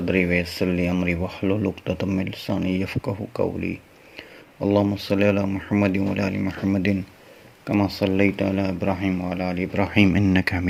ویسر لی امری واحلل عقدۃ من لسانی یفقہوا قولی اللہم صلی علی محمد وعلی آل محمد کما صلیت علی ابراہیم وعلی آل ابراہیم انک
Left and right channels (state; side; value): identical; both; correlation 1.00